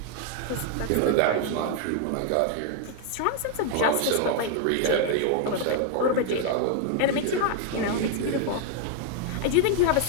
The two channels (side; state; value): both; different; correlation 0.00